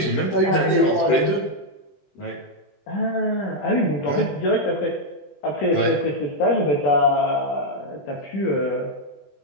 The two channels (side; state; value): right; late; 21 ms